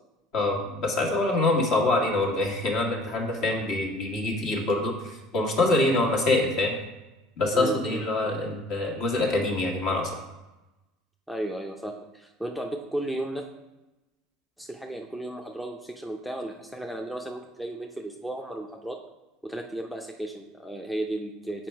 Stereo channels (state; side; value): normal; both; correlation 0.55